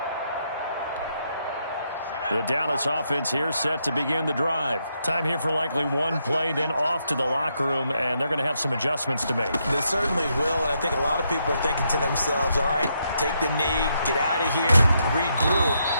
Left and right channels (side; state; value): both; inverted; correlation -0.79